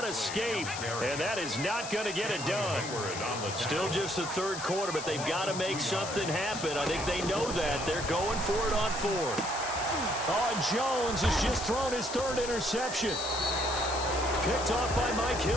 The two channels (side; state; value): left; noise; hiss, 8 dB below the sound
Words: escape. And that is not going to get it done. Still just the 3rd quarter, but they've got to make something happen. I think they know that. They're going for it on 4th. Oh, Jones has just thrown his 3rd interception. Picked off by Mike